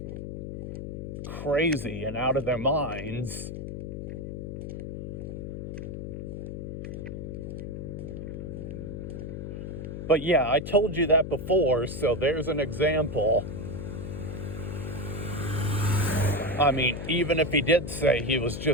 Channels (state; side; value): noise; left; hum, 6 dB below the sound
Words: crazy and out of their minds. But yeah, I told you that before, so there's an example. I mean, even if he did say he was